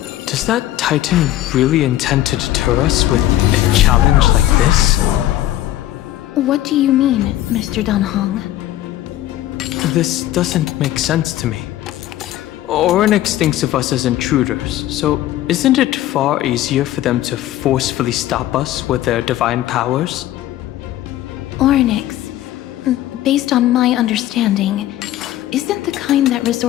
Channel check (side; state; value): right; quieter; 13.9 dB